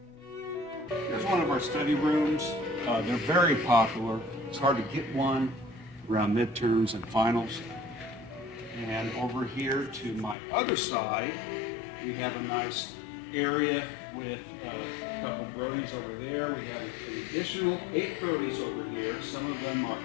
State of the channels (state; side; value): drops out; right; at 10.4 s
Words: Here's one of our study rooms. They're very popular. It's hard to get one around midterms and finals. And over here to my other side, we have a nice area with a couple of Brodies over there. We have an additional 8 Brodies over here. Some of them are